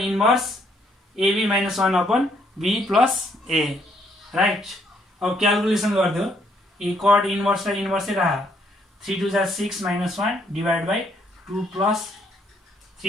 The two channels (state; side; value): normal; both; correlation 0.69